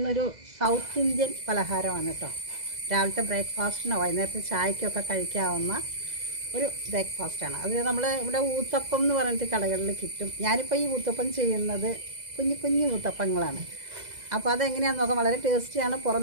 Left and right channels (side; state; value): left; late; 2.0 ms